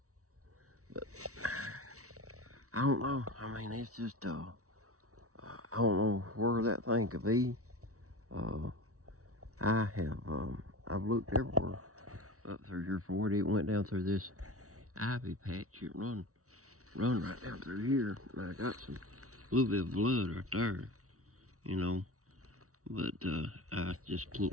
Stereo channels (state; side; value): late; left; 0.65 ms